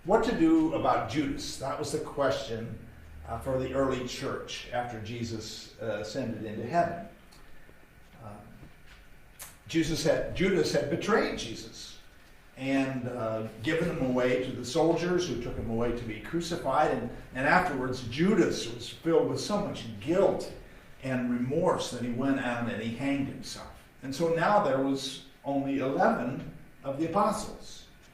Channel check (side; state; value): both; identical; correlation 1.00